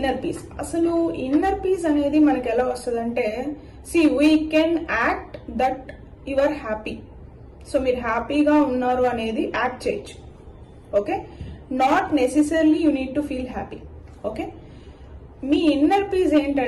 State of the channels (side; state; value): both; identical; correlation 1.00